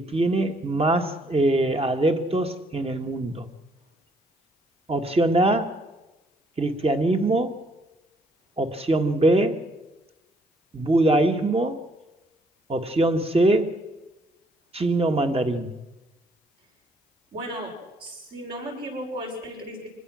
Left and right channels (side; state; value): both; normal; correlation 0.67